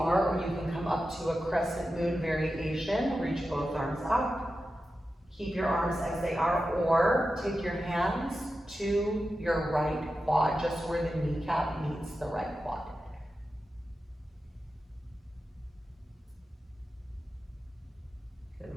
or you can come up to a crescent moon variation. Reach both arms up. Keep your arms as they are, or take your hands to your right quad, just where the kneecap meets the right quad.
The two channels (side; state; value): both; normal; correlation 0.92